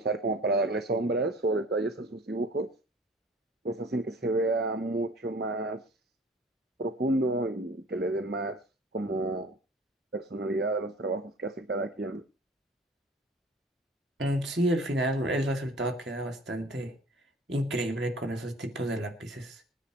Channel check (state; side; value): normal; both; correlation 0.46